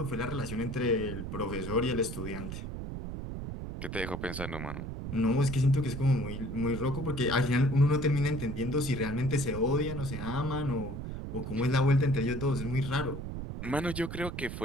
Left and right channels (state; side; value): noise; right; rumble, 6 dB below the sound